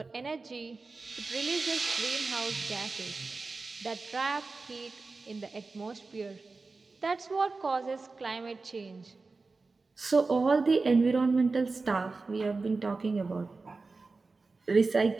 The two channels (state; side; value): quieter; left; 3.9 dB